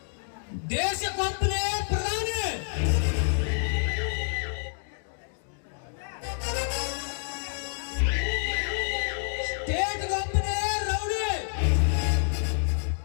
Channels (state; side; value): silent; right; digital silence